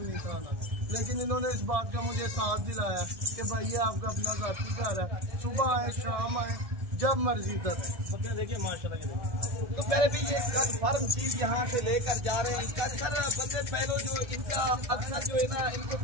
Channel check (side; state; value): left; late; 1.7 ms